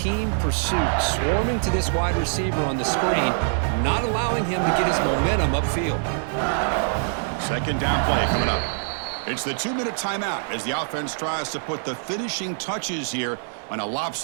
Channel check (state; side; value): silent; left; digital silence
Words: pursuit. Swarming to this wide receiver on the screen, not allowing him to get his momentum upfield. 2nd down play coming up. It's the 2-minute timeout as the offense tries to put the finishing touches here on a